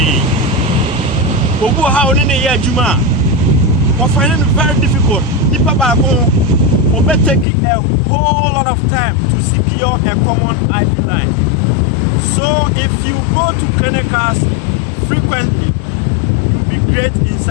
Obu how in a year Juma. We're finding it very difficult. People will be taking a whole lot of time to secure a common IV line. So if you go to clinicals frequently, you'll be great in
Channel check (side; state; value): right; drops out; at 7.5 s